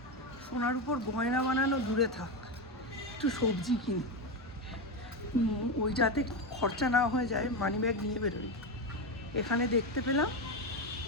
সোনার উপর গয়না বানানো দূরে থাক, একটু সবজি কিনি, ওই যাতে খরচা না হয়ে যায় মানি ব্যাগ নিয়ে বেরোই। এখানে দেখতে পেলাম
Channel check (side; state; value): both; normal; correlation 0.13